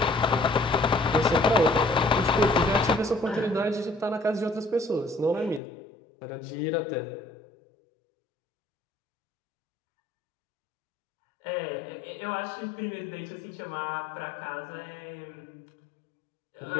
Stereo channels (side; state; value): right; drops out; at 5.6 s